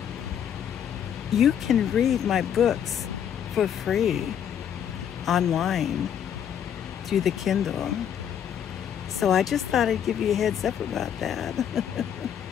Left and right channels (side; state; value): right; quieter; 9.0 dB